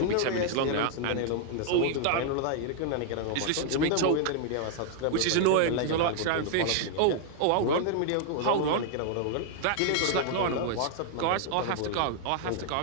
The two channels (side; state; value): both; different; correlation -0.01